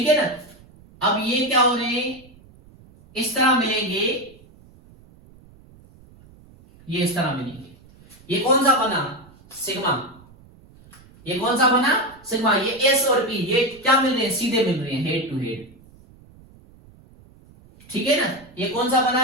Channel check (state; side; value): noise; right; rumble, 25 dB below the sound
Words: है ना। अब ये क्या हो रहे हैं, इस तरह मिलेंगे, ये इस तरह मिलेंगे। ये कौन सा बना, सिग्मा। ये कौन सा बना, सिग्मा। ये एस और पी ये क्या मिल रहे हैं, सीधे मिल रहे हैं, हेड टू हेड, ठीक है ना। ये कौन सा बना